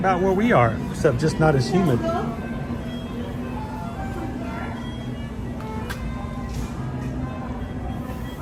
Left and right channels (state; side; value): identical; both; correlation 1.00